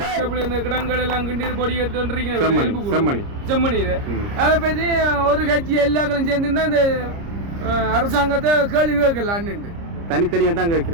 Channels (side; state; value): left; late; 30 ms